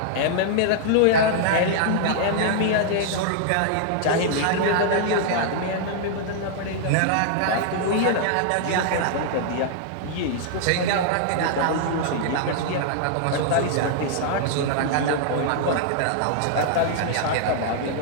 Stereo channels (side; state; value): both; different; correlation -0.01